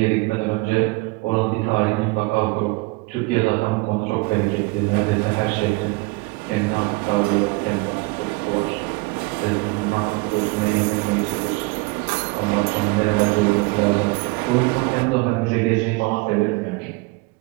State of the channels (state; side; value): quieter; left; 25.2 dB